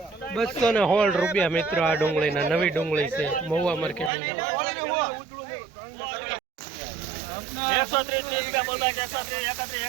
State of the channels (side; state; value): left; drops out; at 4.1 s